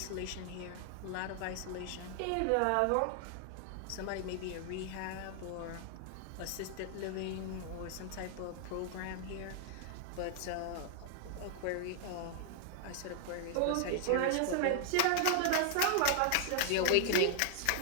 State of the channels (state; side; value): different; both; correlation 0.00